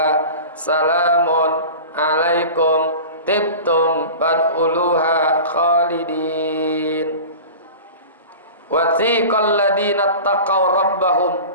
salamun alaikum tibtum fadkhuluha khalidin. Wa thiqal ladina taqaw rabbahum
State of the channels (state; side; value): inverted; both; correlation -0.35